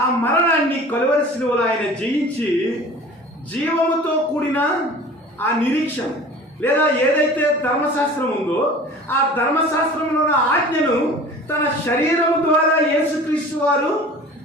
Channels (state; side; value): normal; both; correlation 0.42